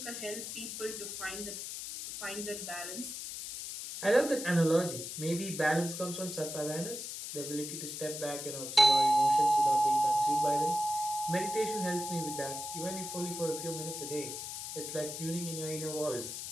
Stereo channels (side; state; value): left; noise; hiss, 7 dB below the sound